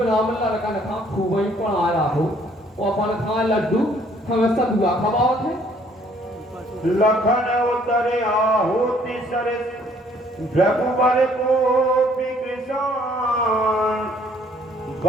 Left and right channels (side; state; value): both; normal; correlation 0.61